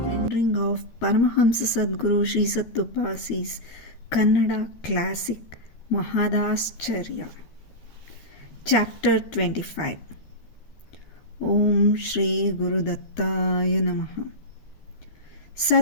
Rendering of Paramahamsa Sadguru Sri Sattupasi's Kannada classic Mahadascharya. Chapter 25. Om Shri Guru Dattaya Namaha.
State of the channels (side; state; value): right; late; 13 ms